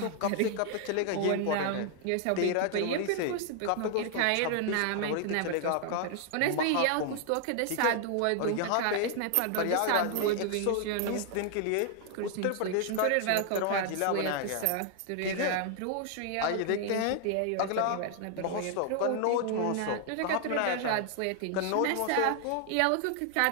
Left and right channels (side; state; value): both; different; correlation 0.00